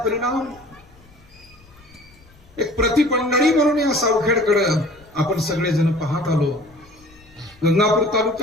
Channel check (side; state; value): left; noise; rumble, 27 dB below the sound